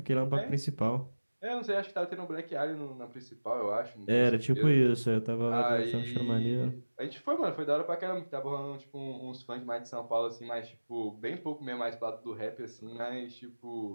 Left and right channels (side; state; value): both; inverted; correlation -1.00